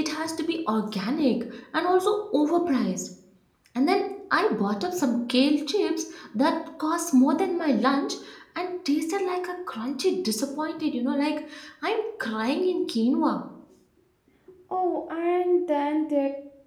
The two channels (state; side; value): identical; both; correlation 1.00